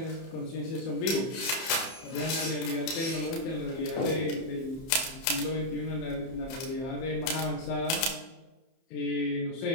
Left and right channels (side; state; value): right; late; 30 ms